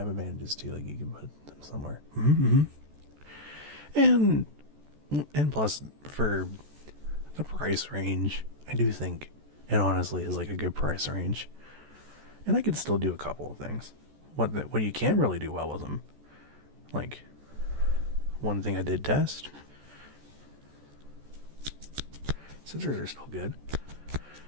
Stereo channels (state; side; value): late; left; 14 ms